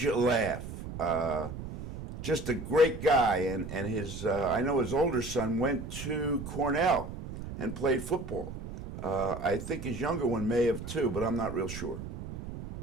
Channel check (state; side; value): noise; right; rumble, 9 dB below the sound